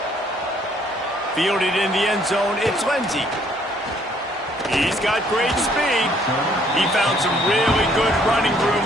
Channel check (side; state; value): both; normal; correlation 0.63